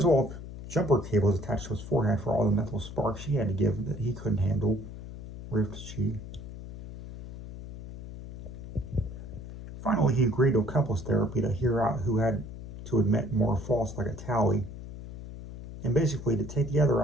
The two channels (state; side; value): noise; left; hum, 11 dB below the sound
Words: well have jumper cables attached to his forehead for all the mental sparks she had to give that he couldn't handle, riffed she. Finally, he agreed to a couples therapy to hear out who had to admit more faults like a tally, and basically to take the other